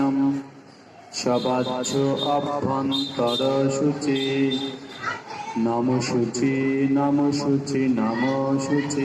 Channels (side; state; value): both; identical; correlation 1.00